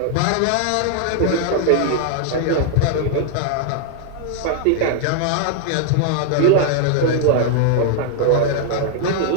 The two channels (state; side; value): different; both; correlation 0.00